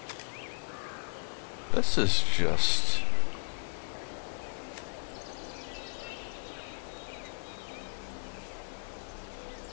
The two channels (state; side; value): silent; right; 55 dB below the other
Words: This is just...